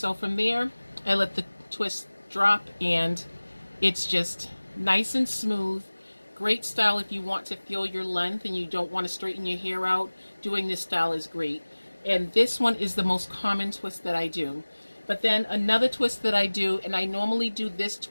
from there I let the twist drop, and it's just nice and smooth. Great style if you want to feel your length and you don't want to straighten your hair out. Doing this style is great. And this one is the most common twist that I do. But then another twist that I do, and I normally do this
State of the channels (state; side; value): inverted; both; correlation -1.00